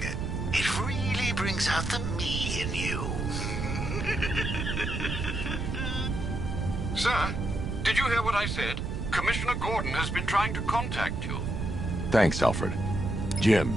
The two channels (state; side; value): noise; right; rumble, 2 dB below the sound